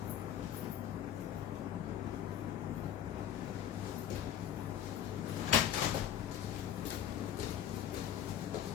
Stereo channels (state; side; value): quieter; right; 10.3 dB